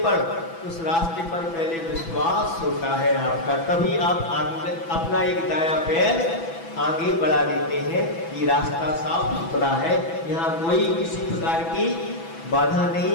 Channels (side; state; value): right; late; 6.0 ms